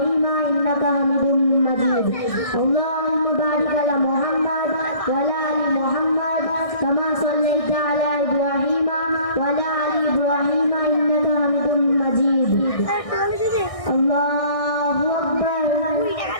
إنك حميد مجيد. اللهم بارك على محمد وعلى آل محمد كما صليت على إبراهيم وعلى آل إبراهيم إنك حميد مجيد. الله أكبر.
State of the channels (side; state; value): right; late; 1.6 ms